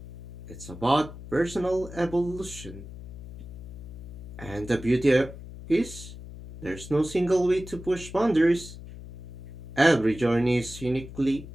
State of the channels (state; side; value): noise; left; hum, 13 dB below the sound